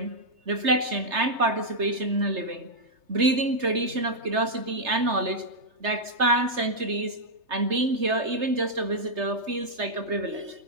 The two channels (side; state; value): left; late; 3.3 ms